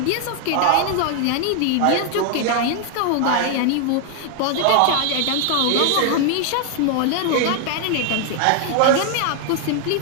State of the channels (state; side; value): different; both; correlation 0.00